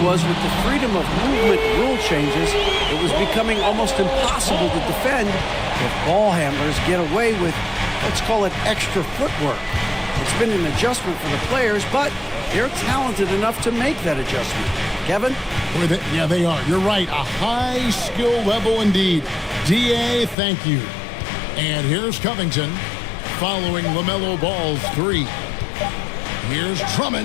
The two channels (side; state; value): right; drops out; at 20.4 s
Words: was with the freedom of movement rule changes, it was becoming almost impossible to defend if ball handlers get away with, let's call it, extra footwork. It's been an adjustment for the players, but they're talented enough to make that adjustment. Kevin? Yeah, they are. You're right. A high skill level indeed. DA, thank you. And here's Covington following LaMelo Ball's 3. Here's